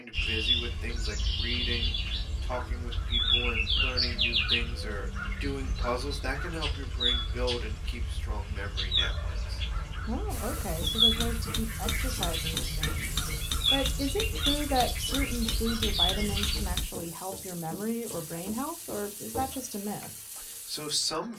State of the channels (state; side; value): identical; both; correlation 1.00